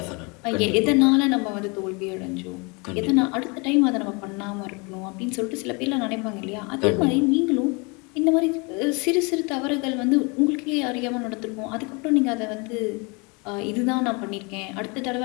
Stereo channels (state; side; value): quieter; right; 30.3 dB